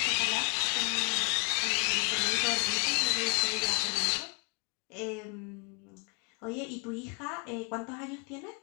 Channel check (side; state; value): right; quieter; 35.7 dB